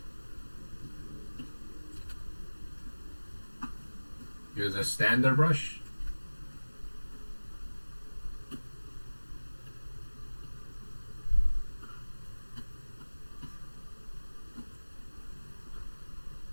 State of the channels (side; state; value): both; inverted; correlation -1.00